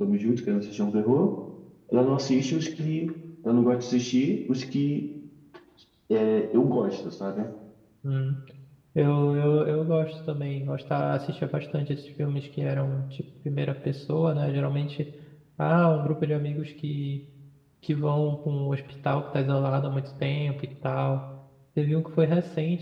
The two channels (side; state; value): both; identical; correlation 1.00